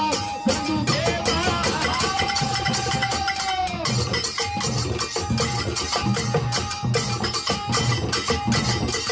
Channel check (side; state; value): both; identical; correlation 1.00